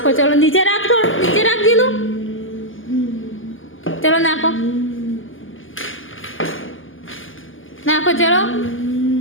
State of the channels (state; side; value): late; right; 0.58 ms